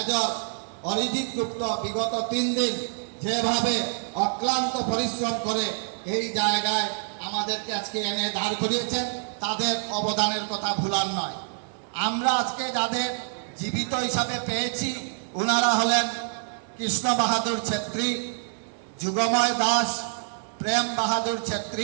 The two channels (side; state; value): left; silent; digital silence